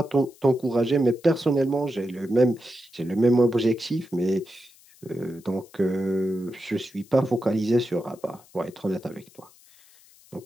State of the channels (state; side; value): noise; left; hiss, 27 dB below the sound